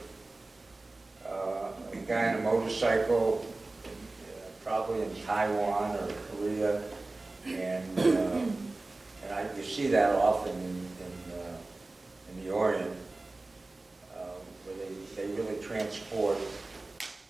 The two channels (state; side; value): quieter; left; 3.1 dB